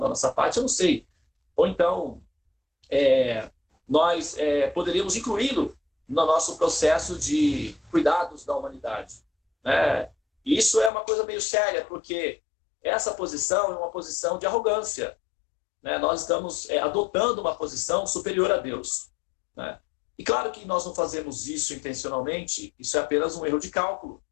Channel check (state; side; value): drops out; right; at 10.9 s